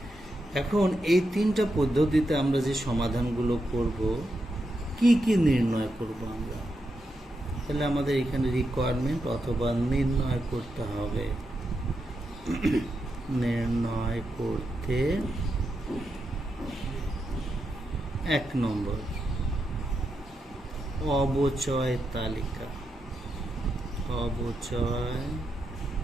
এখন এই 3টা পদ্ধতিতে আমরা যে সমাধানগুলো করব, কি কি নির্ণয় করব আমরা? তাহলে আমাদের এখানে রিকোয়ারমেন্ট অথবা নির্ণয় করতে হবে। নির্ণয় করতে 1 নম্বর অবচয় তালিকা। অবচয়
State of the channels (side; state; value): both; normal; correlation 0.85